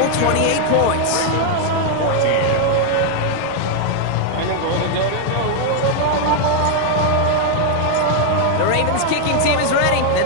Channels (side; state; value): both; different; correlation 0.00